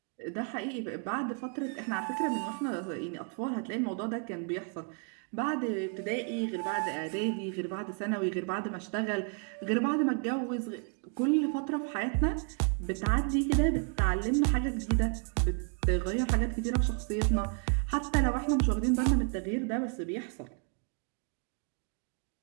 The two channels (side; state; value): left; quieter; 39.6 dB